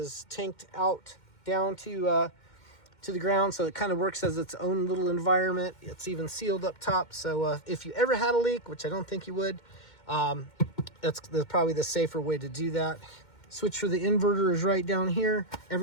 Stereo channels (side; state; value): right; late; 2.1 ms